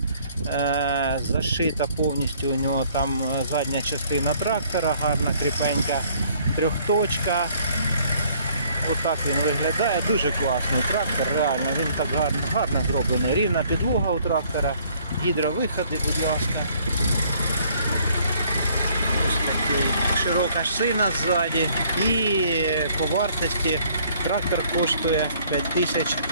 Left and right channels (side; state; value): both; inverted; correlation -0.61